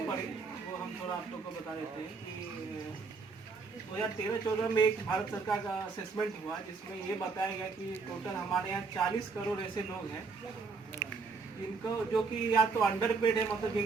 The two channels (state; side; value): quieter; left; 4.6 dB